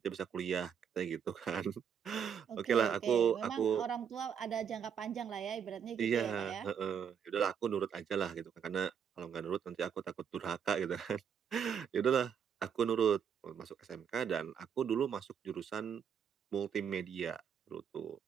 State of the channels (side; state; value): left; quieter; 7.7 dB